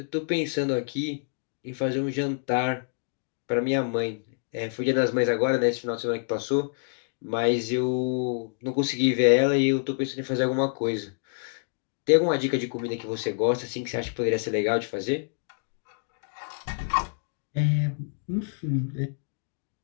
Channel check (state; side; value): silent; right; digital silence